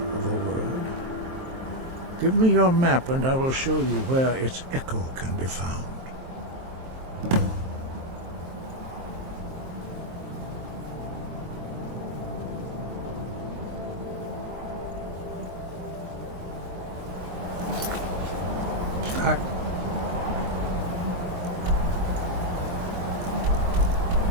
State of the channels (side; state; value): left; late; 23 ms